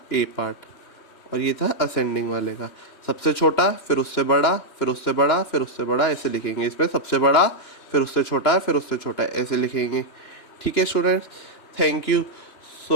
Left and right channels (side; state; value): right; late; 3.1 ms